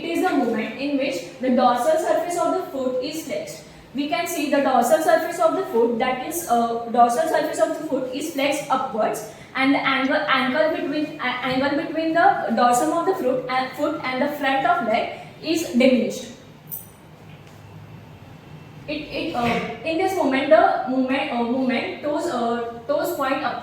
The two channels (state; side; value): identical; both; correlation 1.00